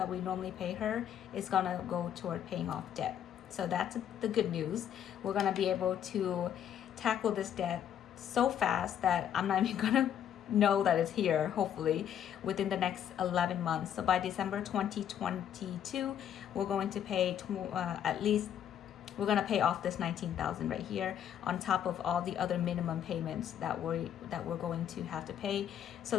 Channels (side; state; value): right; quieter; 9.7 dB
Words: we normally pay her is gonna go toward paying off debt. So that's the good news. We're gonna be able to tackle this debt so fast that I'm not even gonna know that it's here, hopefully within the next 11 months. So by December 2022, we're going to pay at least, we're going to pay off this 19,000 right here, on top of all the other minimum payments that we're going to have to pay.